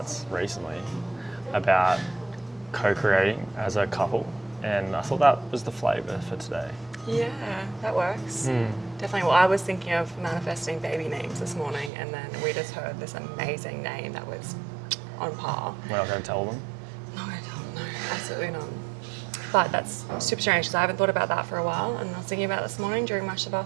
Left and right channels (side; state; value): left; drops out; at 11.9 s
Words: recently about co-creating as a couple, and I thought that was the flavour for today. Yeah, that works. Definitely. Well, I was thinking of manifesting baby names this morning, and then we just heard this amazing name that was on par. We're not going to tell them. Not going to tell them, no, absolutely not. But that's super strange because I haven't thought about that for a while, and I was thinking about it this morning during my